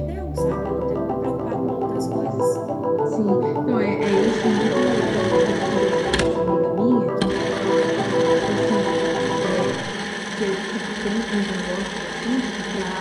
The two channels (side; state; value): both; identical; correlation 1.00